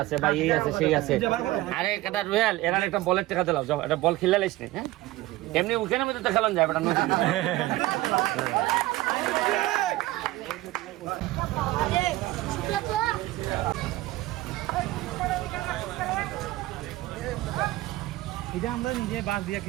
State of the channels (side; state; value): left; quieter; 17.7 dB